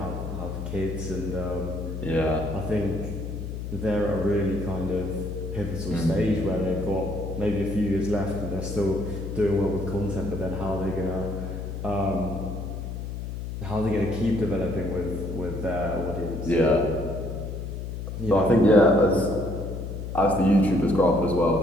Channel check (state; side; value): noise; left; hum, 6 dB below the sound